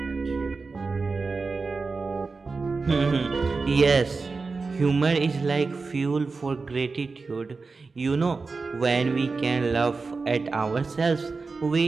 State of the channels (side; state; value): left; quieter; 4.2 dB